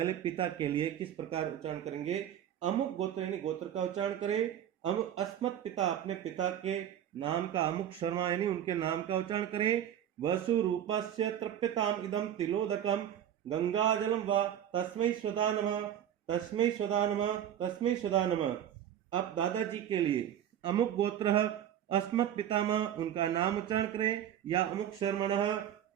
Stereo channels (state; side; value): quieter; left; 10.4 dB